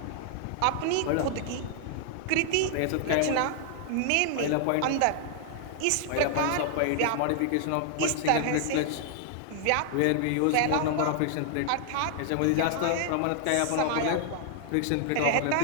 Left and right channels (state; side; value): different; both; correlation 0.00